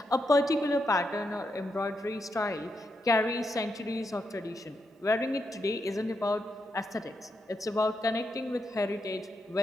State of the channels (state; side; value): normal; both; correlation 0.82